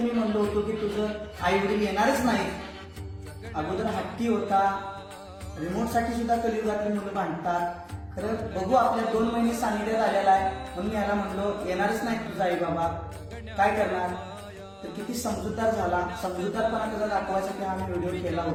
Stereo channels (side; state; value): both; identical; correlation 1.00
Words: म्हणलो होतो की तुझं आई वडील येणारच नाही. अगोदर हट्टी होता, रिमोटसाठी सुद्धा कलियुगातली मुलं भांडतात. खरं बघू, आपल्या 2 महिने सानिध्यात आलेला आहे म्हणून याला म्हणलो येणारच नाही तुझा आई बाबा, काय करणार. तर किती समजूतदार झाला. समजूतदारपणा त्याचा दाखवायसाठी हा मी व्हिडिओ केला